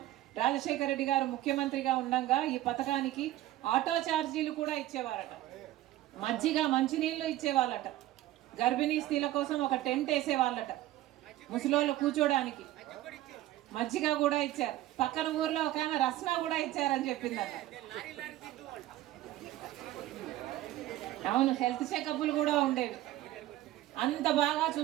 రాజశేఖర రెడ్డి గారు ముఖ్యమంత్రిగా ఉండగా ఈ పథకానికి ఆటో ఛార్జీలు కూడా ఇచ్చేవారట, మజ్జిగ, మంచినీళ్ళు ఇచ్చేవాళ్ళట, గర్భిణీ స్త్రీల కోసం ఒక టెంట్ వేసేవాళ్ళట, ముసలోళ్ళు కూర్చోడానికి మజ్జిగ కూడా ఇచ్చారు. పక్కన ఊర్లో ఒక ఆమె రస్నా కూడా ఇచ్చారని చెప్పిందట. అవును, హెల్త్ చెకప్లు కూడా ఉండేవి. అంత బాగా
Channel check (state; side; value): quieter; left; 15.0 dB